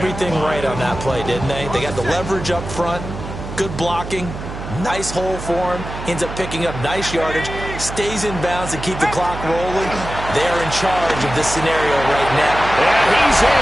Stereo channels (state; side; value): noise; right; hum, 9 dB below the sound